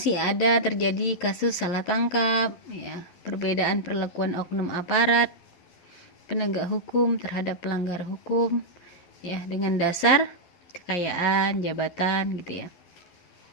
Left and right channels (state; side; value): late; right; 11 ms